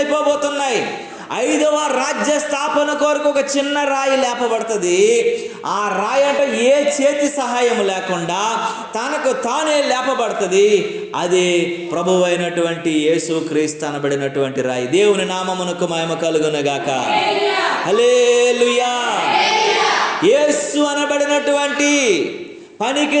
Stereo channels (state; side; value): identical; both; correlation 1.00